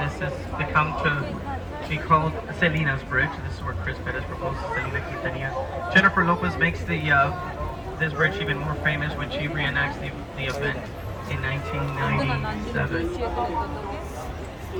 has become be called Selena's Bridge. This is where Chris Perez proposed to Selena Quintanilla. Jennifer Lopez makes this bridge even more famous when she reenacts the event in 1997.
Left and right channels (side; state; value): both; identical; correlation 1.00